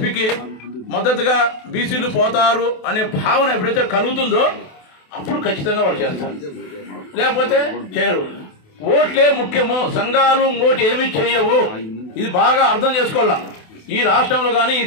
మద్దతుగా బీసీలు పోతారు అనే భావన ఎప్పుడైతే కలుగుతుందో అప్పుడు ఖచ్చితంగా వాళ్ళు చేస్తారు, లేకపోతే చేయరు. ఓట్లే ముఖ్యము, సంఘాలు ఇంకోటి ఏమీ చేయవు. ఇది బాగా అర్థం చేసుకోవాలా. ఈ రాష్ట్రంలో కానీ ఈ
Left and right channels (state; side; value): late; right; 28 ms